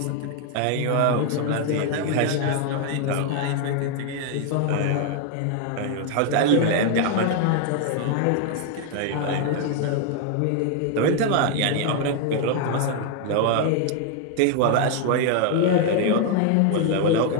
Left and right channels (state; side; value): different; both; correlation 0.00